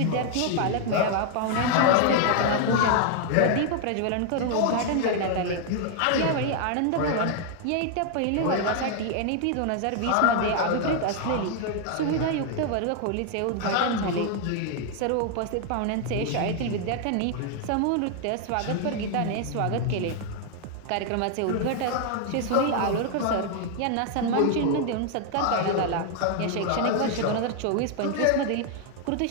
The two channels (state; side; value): different; both; correlation 0.00